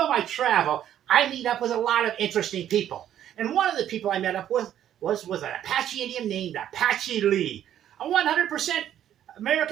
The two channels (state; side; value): quieter; left; 10.9 dB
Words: my travel, I meet up with a lot of interesting people. And one of the people I met up with was an Apache Indian named Apache Lee, a 100%